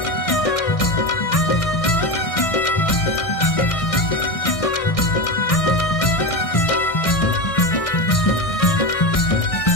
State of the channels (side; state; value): right; late; 1.6 ms